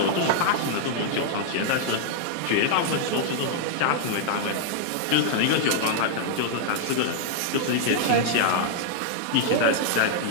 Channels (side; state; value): both; different; correlation -0.01